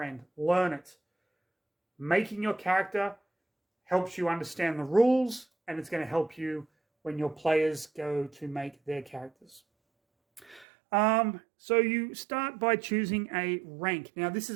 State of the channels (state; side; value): drops out; left; at 10.7 s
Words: Learn it. Making your character helps you understand the rules, and it's going to help you when your players go to make their characters. So you start by choosing a rank. Now, this